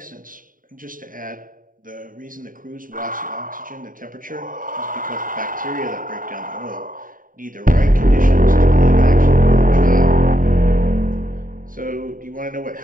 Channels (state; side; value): late; left; 0.40 ms